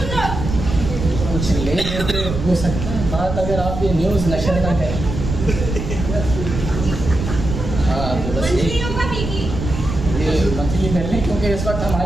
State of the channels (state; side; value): noise; right; rumble, 5 dB below the sound